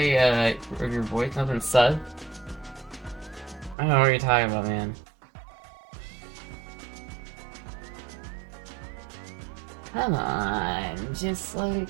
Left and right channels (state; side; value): drops out; left; at 3.8 s